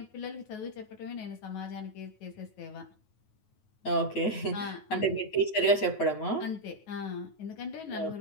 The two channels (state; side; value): late; right; 9.4 ms